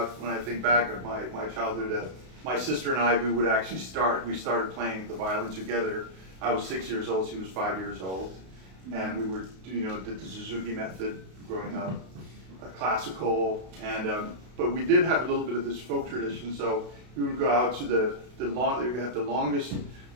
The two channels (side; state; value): left; late; 32 ms